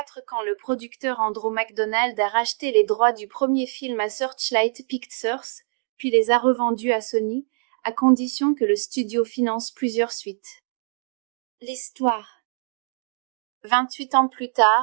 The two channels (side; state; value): left; silent; digital silence